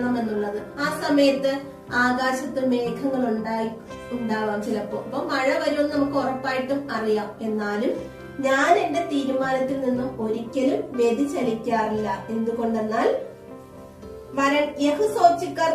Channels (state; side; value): identical; both; correlation 1.00